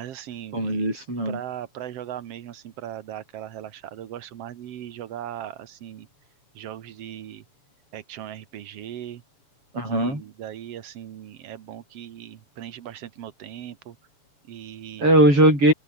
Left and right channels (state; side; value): late; left; 7.2 ms